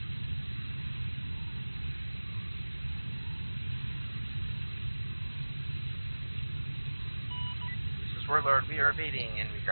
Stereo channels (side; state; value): both; inverted; correlation -1.00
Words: This is Warlord. We are evading enemy